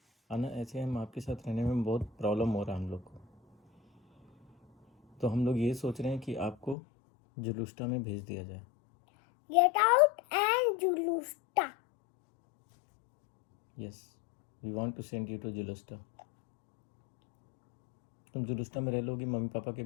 आना ऐसे हम आपके साथ रहने में बहुत प्रॉब्लम हो रहा है हम लोग को। तो हम लोग ये सोच रहे हैं कि आपको जुलूस्टा में भेज दिया जाए। गेट आउट एंड जुलूस्टा। Yes, we want to send you to जुलूस्टा। तुम जुलूस्टा में रह लोगी मम्मी पापा के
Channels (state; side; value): drops out; right; at 6.8 s